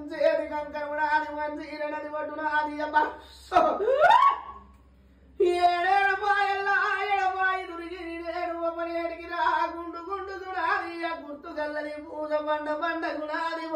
కంకరమునాది మంచీరనది పట్టునాది ఏడేడు పాయల్లా ఎడపాయి దురిగి నేడు ఒకనేటికి రా గుండు దునాది గుర్తు గల్లది పూజ బండ గుణాది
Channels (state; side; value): identical; both; correlation 1.00